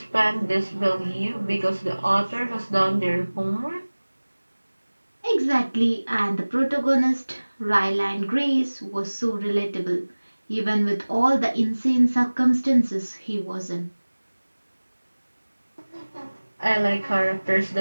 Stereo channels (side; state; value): both; inverted; correlation -1.00